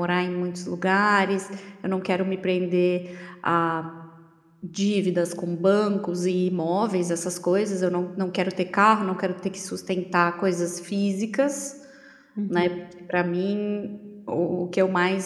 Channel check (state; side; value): identical; both; correlation 1.00